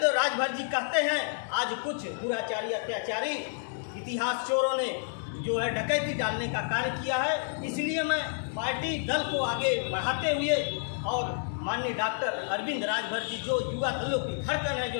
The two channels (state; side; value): silent; right; digital silence